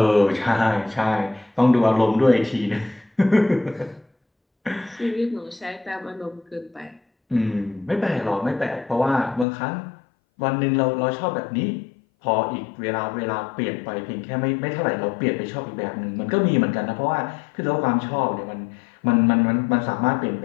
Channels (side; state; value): right; drops out; at 9.5 s